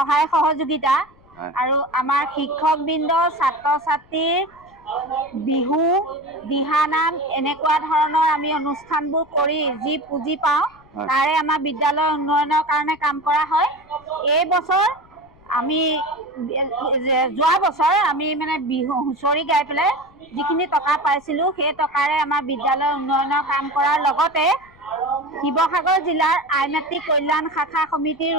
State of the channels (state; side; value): noise; left; rumble, 28 dB below the sound